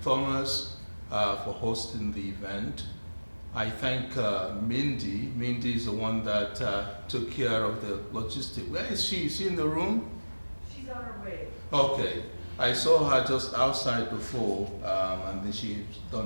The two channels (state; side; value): inverted; both; correlation -1.00